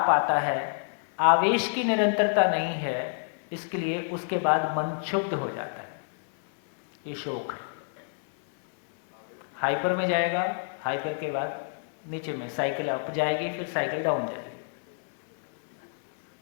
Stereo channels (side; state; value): right; silent; 59 dB below the other